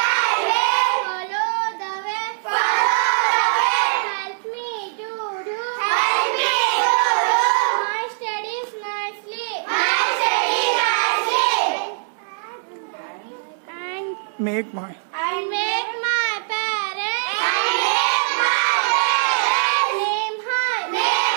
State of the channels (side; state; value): left; silent; digital silence